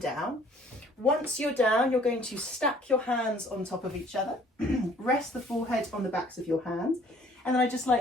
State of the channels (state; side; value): normal; both; correlation 0.57